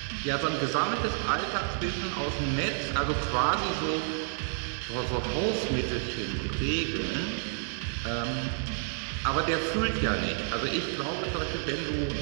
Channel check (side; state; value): left; silent; digital silence